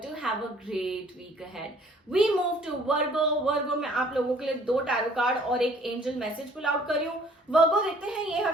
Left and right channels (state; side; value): normal; both; correlation 0.57